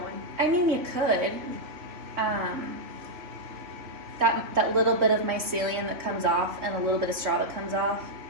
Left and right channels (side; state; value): left; late; 3.3 ms